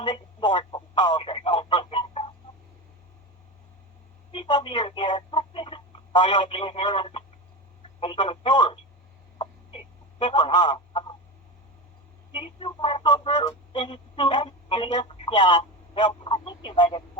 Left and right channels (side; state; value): both; normal; correlation 0.22